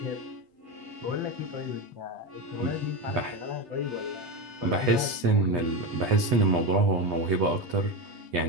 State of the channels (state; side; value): late; left; 8.2 ms